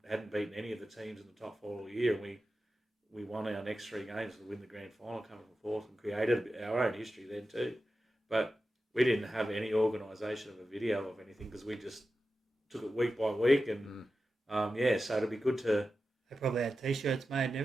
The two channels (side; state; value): both; normal; correlation 0.92